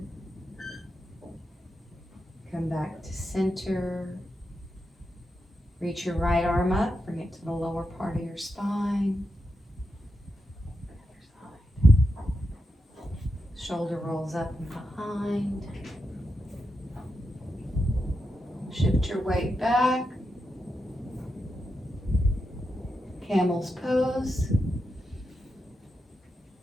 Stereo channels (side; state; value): both; normal; correlation 0.87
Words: Come back to center. Reach your right arm up, bring it to the lower part of your spine. Shoulder rolls up and behind. Shift your weight back. Camel's pose.